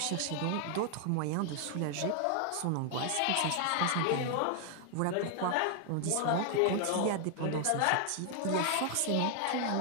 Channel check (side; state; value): both; different; correlation 0.00